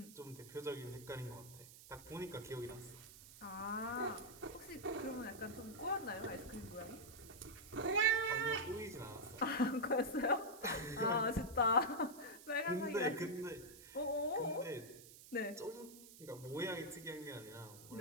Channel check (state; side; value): noise; right; hiss, 17 dB below the sound